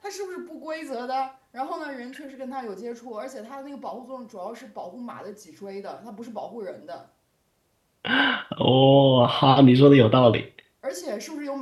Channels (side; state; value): both; identical; correlation 1.00